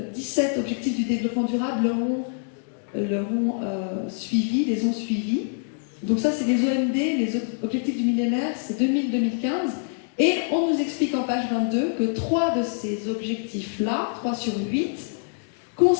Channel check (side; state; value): right; silent; 62 dB below the other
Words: 17 objectifs du développement durable les ont suivis. Donc ça, c'est les OMD, les objectifs du millénaire, c'est 2000-2015. Et on nous explique en page 22 que 3 de ces objectifs-là, 3 sur 8,